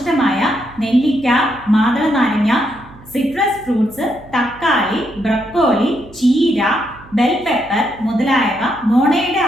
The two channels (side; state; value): right; noise; hum, 22 dB below the sound